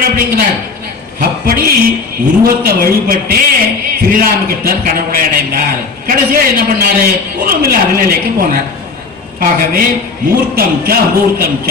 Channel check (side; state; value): right; quieter; 4.4 dB